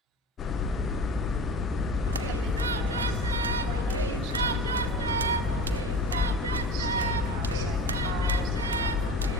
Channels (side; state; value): both; normal; correlation 0.34